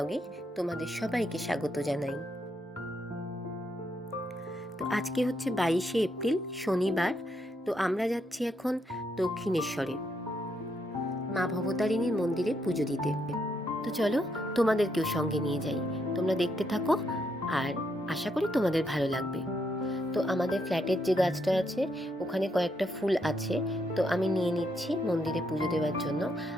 তোমাদের সবাইকে স্বাগত জানাই। তো আজকে হচ্ছে 22শে এপ্রিল, শনিবার। তো আমরা যাচ্ছি এখন দক্ষিণেশ্বরে মা ভবতারিণীর মন্দিরে পুজো দিতে। তো চলো তোমাদেরকেও সঙ্গে নিয়ে যাই, তোমরা দেখতে থাকো, আর আশা করি তোমাদের ভালো লাগবে। তো আমাদের ফ্ল্যাটের যে গাছটা আছে ওখানে কয়েকটা ফুল আছে, তো আমি নিয়ে নিচ্ছি মন্দিরে পুজো দেওয়ার জন্য।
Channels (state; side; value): normal; both; correlation 0.77